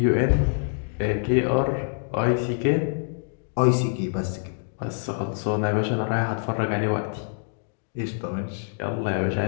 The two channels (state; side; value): silent; right; digital silence